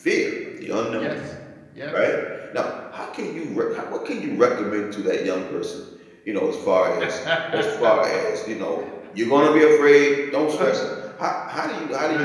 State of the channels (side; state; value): both; identical; correlation 1.00